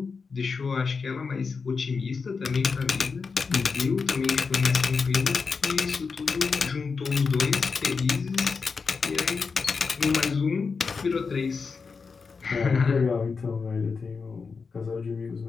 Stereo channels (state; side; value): quieter; right; 5.0 dB